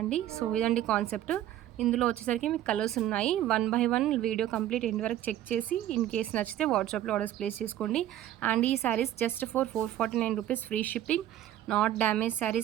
సో ఇదండి కాన్సెప్ట్. ఇందులో వచ్చేసరికి మీకు కలర్స్ ఉన్నాయి. 1 by 1 వీడియో కంప్లీట్ ఎండ్ వరకు చెక్ చేసి ఇన్ కేస్ నచ్చితే వాట్సాప్లో ఆర్డర్స్ ప్లేస్ చేసుకోండి. అండ్ ఈ saris just for 449 rupees free shipping. Not damage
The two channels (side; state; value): left; quieter; 12.5 dB